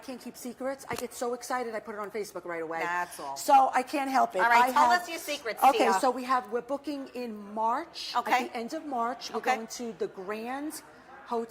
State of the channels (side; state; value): both; identical; correlation 1.00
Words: keep secrets. I get so excited, I put it on Facebook right away. That's all. So I can't help it. All right, tell us your secrets, Okay, Tia. so we're booking in March. Okay. At the end of March, we're going to the Grand